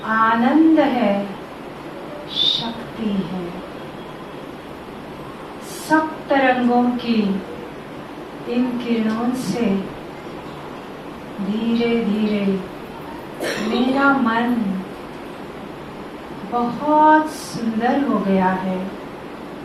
आनंद है, शक्ति है। सप्त रंगों की इन किरणों से धीरे धीरे मेरा मन बहुत सुंदर हो गया है,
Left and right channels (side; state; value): both; identical; correlation 1.00